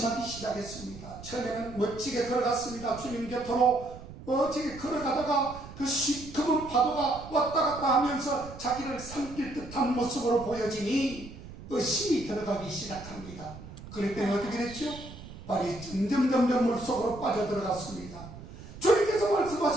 시작했습니다. 처음에는 멋지게 걸어갔습니다. 주님 곁으로 멋지게 걸어가다가 그 시커먼 파도가 왔다 갔다 하면서 자기를 삼킬 듯한 모습으로 보여지니 의심이 들어가기 시작합니다. 그랬더니 어떻게 됐죠? 발이 점점 물속으로 빠져들어갔습니다. 주님께서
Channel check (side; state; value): right; noise; rumble, 15 dB below the sound